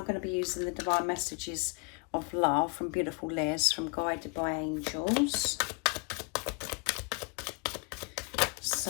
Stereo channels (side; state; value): right; quieter; 33.3 dB